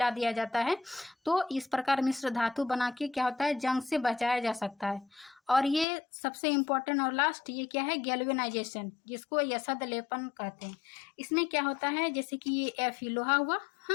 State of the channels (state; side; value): drops out; right; at 5.9 s